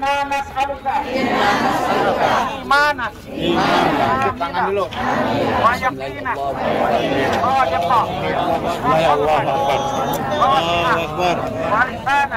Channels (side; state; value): both; identical; correlation 1.00